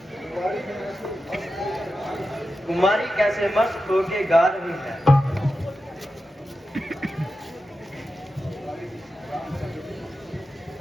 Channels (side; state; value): both; normal; correlation 0.91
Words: कुमारी कैसे मस्त होके गा रही है।